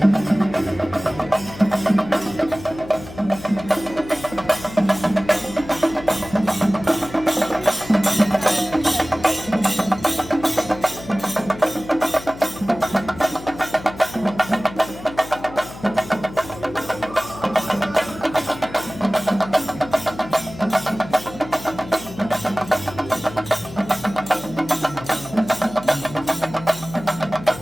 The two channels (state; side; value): noise; left; hum, 15 dB below the sound